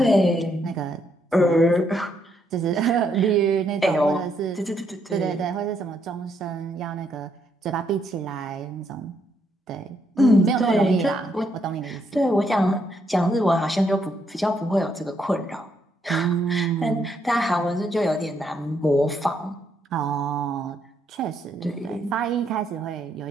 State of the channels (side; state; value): both; normal; correlation 0.75